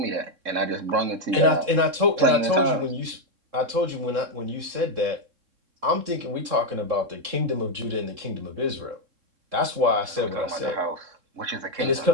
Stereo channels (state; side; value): late; left; 3.7 ms